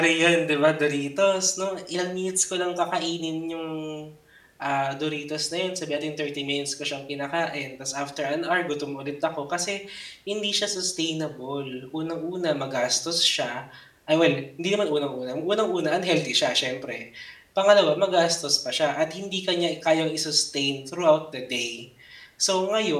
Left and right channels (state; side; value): identical; both; correlation 1.00